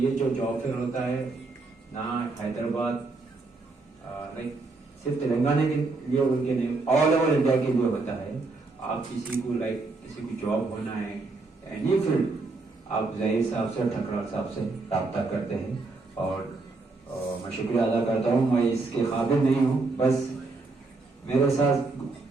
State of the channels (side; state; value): left; quieter; 3.6 dB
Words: जो जॉब फेयर होता है ना हैदराबाद लाइक सिर्फ तेलंगाना के लिए उनके नहीं, ऑल ओवर इंडिया के लिए होता है। आप किसी को किसी की जॉब होना है, एनी फील्ड, आप ज़हीर साहब से, ठकराल साहब से रब्ता करते हैं। और मैं शुक्रिया अदा करता हूँ। मैं इसके काबिल नहीं हूँ, बस मेरे साथ